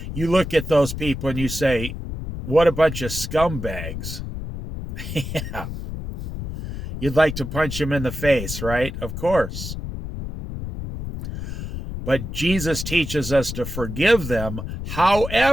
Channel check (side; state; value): left; noise; rumble, 7 dB below the sound